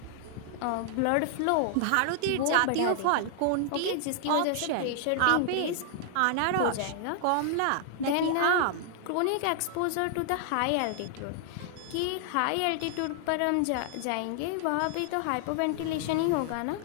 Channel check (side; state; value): both; different; correlation -0.01